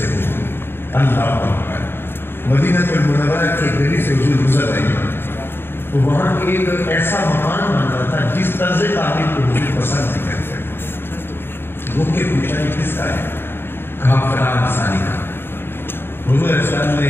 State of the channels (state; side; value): late; right; 0.11 ms